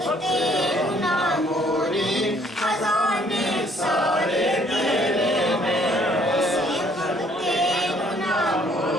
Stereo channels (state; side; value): normal; both; correlation 0.62